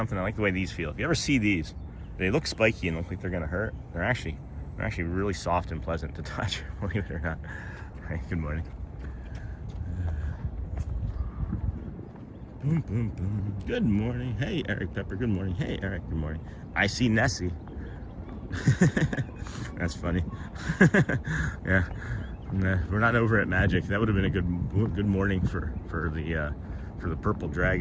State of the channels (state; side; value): identical; both; correlation 1.00